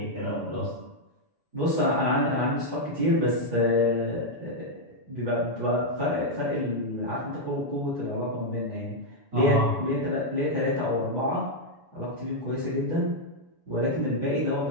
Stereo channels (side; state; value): left; late; 7.0 ms